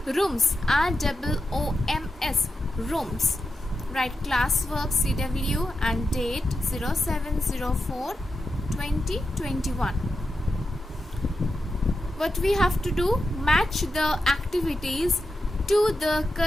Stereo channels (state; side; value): normal; both; correlation 0.89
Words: rooms, ROOMS, rooms. Write classwork CW and date 07/04/2021. What we have to do? Match the activities to the